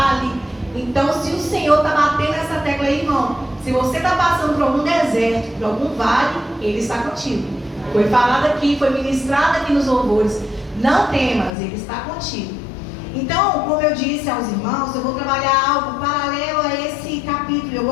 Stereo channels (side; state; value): right; drops out; at 11.5 s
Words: Então, se o Senhor está batendo essa tecla aí, irmão, se você está passando por algum deserto, por algum vale, Ele está contigo. Foi falado aqui, foi ministrado aqui nos louvores. Não temas, Ele está contigo. Então, como eu disse aos irmãos, eu vou trabalhar algo paralelo a esse capítulo Bíblia, eu